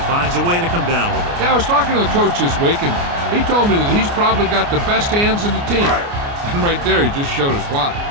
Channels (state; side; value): late; left; 29 ms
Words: finds a way to come down with it. Yeah, I was talking to the coach this week, and he told me that he's probably got the best hands in the team. And right there, he just showed us why.